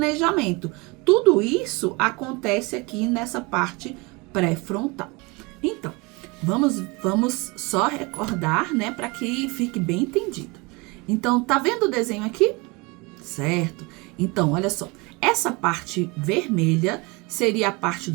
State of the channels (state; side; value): quieter; left; 26.6 dB